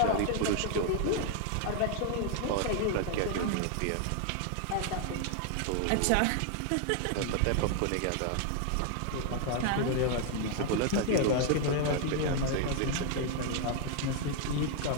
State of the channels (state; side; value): different; both; correlation 0.00